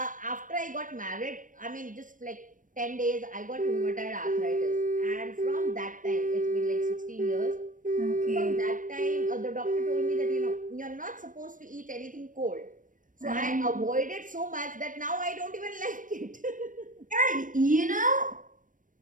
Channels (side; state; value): left; late; 0.38 ms